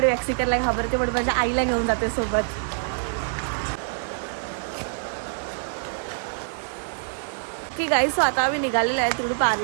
वॅक्सिंग करायला घाबरते, पण माझ्या आईला घेऊन जाते सोबत. ओके गाईज, सो आता आम्ही निघालेलो आहे तिकडून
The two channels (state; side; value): silent; left; digital silence